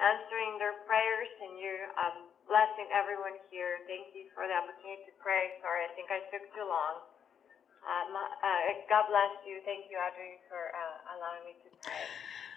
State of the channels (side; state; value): right; quieter; 8.1 dB